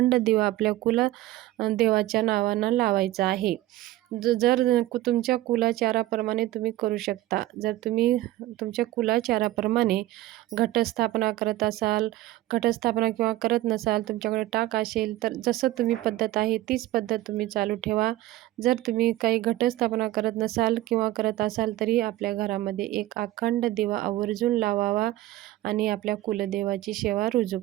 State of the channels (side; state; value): left; quieter; 15.9 dB